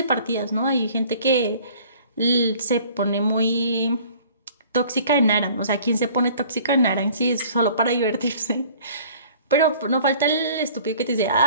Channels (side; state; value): both; inverted; correlation -0.51